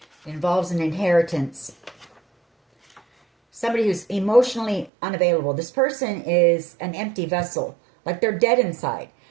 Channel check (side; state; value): left; drops out; at 4.9 s